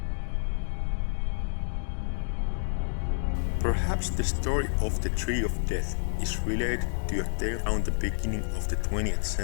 Perhaps the story of the Tree of Death is related to a tale around the beginning of the 20th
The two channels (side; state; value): right; silent; digital silence